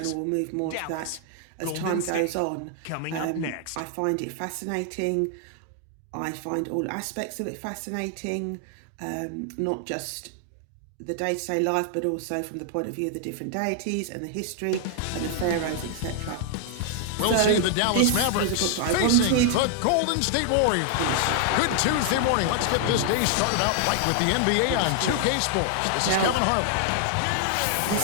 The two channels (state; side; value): different; both; correlation 0.00